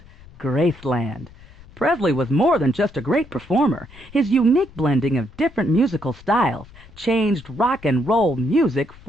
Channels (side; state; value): left; noise; rumble, 21 dB below the sound